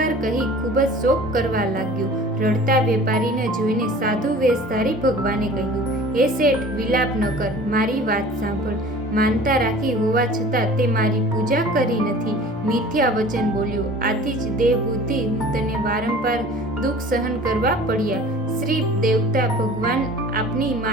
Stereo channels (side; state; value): both; normal; correlation 0.44